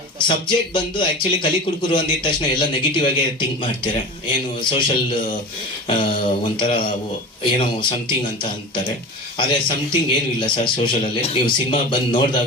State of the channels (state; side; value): normal; both; correlation 0.32